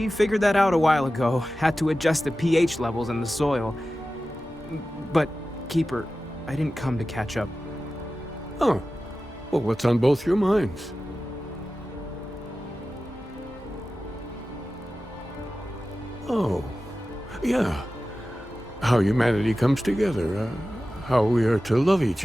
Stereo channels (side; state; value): both; normal; correlation 0.94